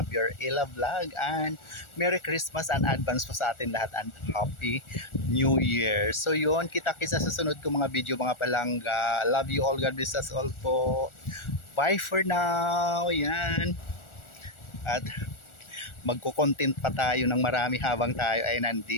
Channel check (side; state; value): right; late; 1.4 ms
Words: Ella Vlog, and Merry Christmas and advance po sa atin lahat and Happy New Year. So yun, kita-kits sa susunod ko mga video mga palangga. Love you all, God bless us all po. Bye for now. Yan. At magko-content pa tayo ng marami habang tayo ay